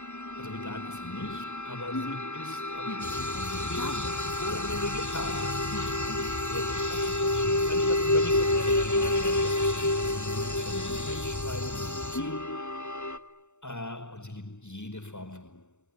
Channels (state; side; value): late; right; 0.84 ms